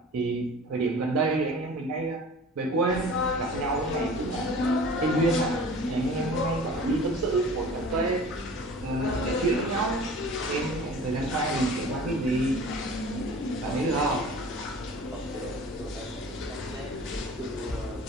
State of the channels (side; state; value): both; normal; correlation 0.42